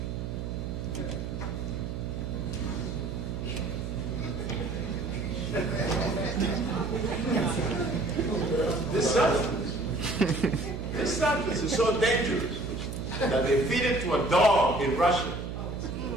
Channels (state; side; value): noise; right; hum, 5 dB below the sound